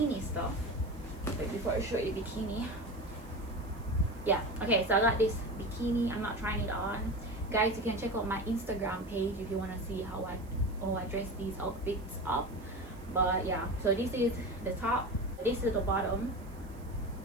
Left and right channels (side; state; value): right; noise; hiss, 26 dB below the sound